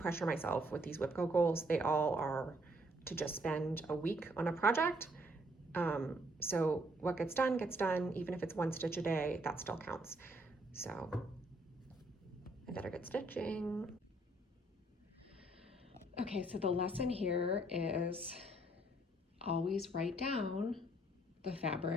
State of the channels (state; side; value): normal; both; correlation 0.67